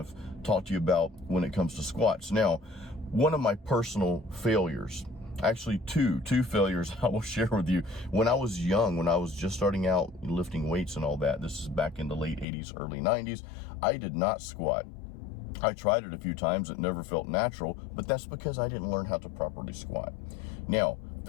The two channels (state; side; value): drops out; right; at 12.5 s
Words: talk to you about when it comes to squats. Now, one of my personal failures, actually two failures I will share with you. When I was young, when I was just starting out lifting weights and all that, this is back in the late 80s, early 90s, I did not squat. I tried it a few times. It never felt natural, but that's because I didn't learn how to properly squat. Now,